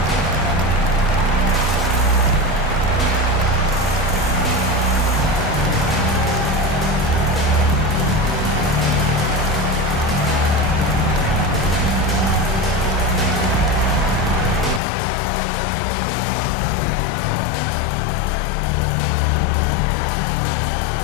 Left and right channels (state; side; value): drops out; right; at 14.8 s